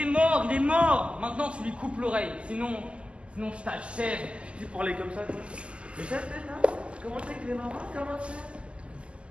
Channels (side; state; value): left; late; 0.054 ms